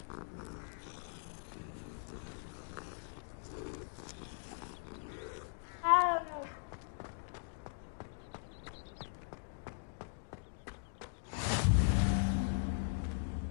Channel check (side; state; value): right; silent; digital silence